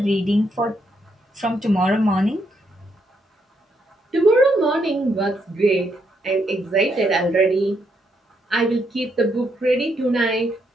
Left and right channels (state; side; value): normal; both; correlation 0.77